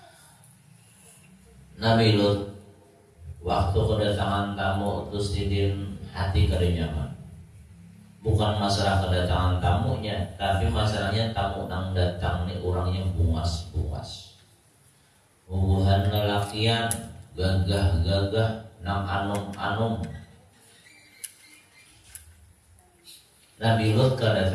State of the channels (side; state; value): both; identical; correlation 1.00